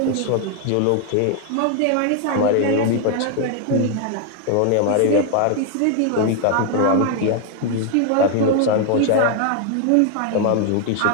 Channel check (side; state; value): both; different; correlation 0.00